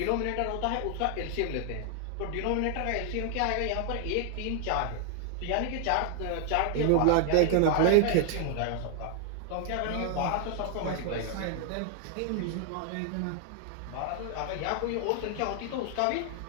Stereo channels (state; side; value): different; both; correlation 0.00